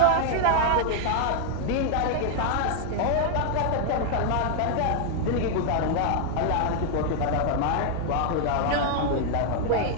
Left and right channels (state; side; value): different; both; correlation 0.00